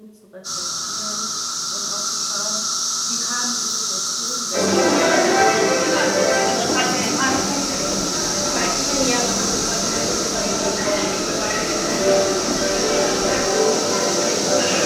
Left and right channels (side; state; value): both; identical; correlation 1.00